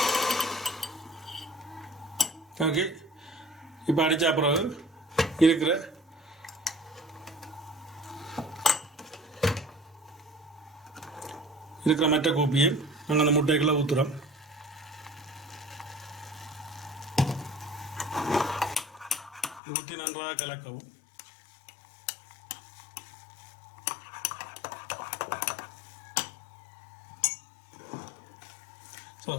ஓகே, இப்போ அடித்தா பிறகு இருக்கிற மற்ற கோப்பியை நாங்கள் அந்த முட்டைக்குள்ளே ஊற்றுறோம். ஊற்றி நன்றாக கலக்கவும். ஸோ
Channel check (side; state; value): right; drops out; at 19.6 s